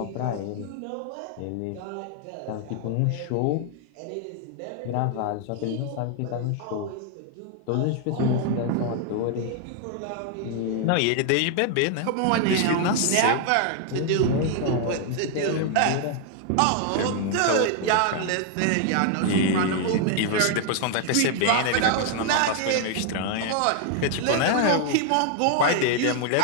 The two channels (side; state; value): both; different; correlation 0.00